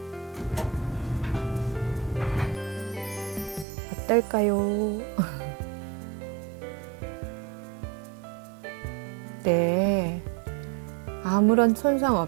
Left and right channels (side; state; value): left; drops out; at 3.7 s